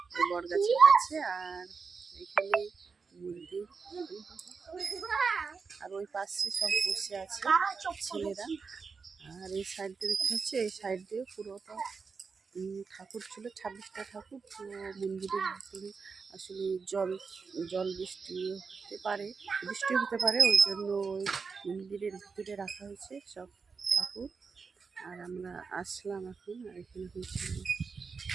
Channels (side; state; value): left; quieter; 5.1 dB